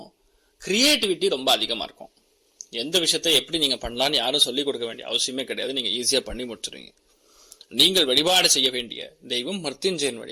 கிரியேட்டிவிட்டி ரொம்ப அதிகமா இருக்கும். எந்த விஷயத்தை எப்படி நீங்க பண்ணலாம்னு யாரும் சொல்லிக் கொடுக்க வேண்டிய அவசியமே கிடையாது. நீங்க ஈஸியா பண்ணி முடிச்சிருவீங்க. நீங்கள் வழிபாடு செய்ய வேண்டிய தெய்வம் மிருத்யுஞ்சயன்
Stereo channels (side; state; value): both; identical; correlation 1.00